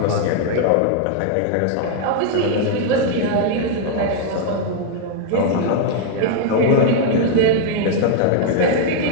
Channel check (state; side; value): different; both; correlation 0.00